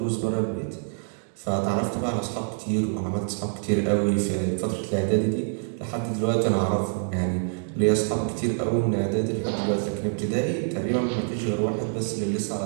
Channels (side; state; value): left; silent; digital silence